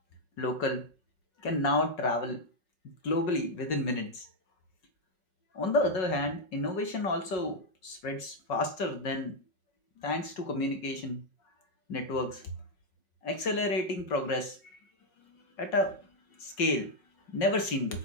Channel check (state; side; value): late; right; 5.4 ms